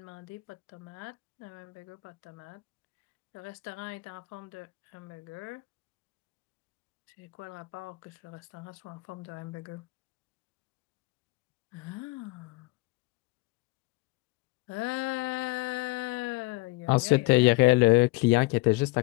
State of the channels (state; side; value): quieter; right; 22.9 dB